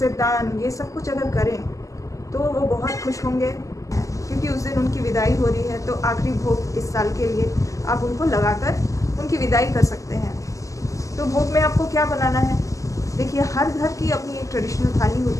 दान, ये सब कुछ अगर करें तो वो बहुत खुश होंगे, क्योंकि उस दिन उनकी विदाई हो रही है। तो आखिरी भोग इस साल के लिए आप उनको लगाकर उनकी विदाई कर सकते हैं। तो भोग में आपको क्या बनाना है? देखिए, हर घर की अपनी एक ट्रेडिशनल थाली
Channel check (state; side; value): late; right; 0.16 ms